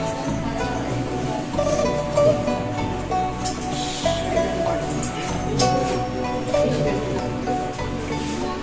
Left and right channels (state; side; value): identical; both; correlation 1.00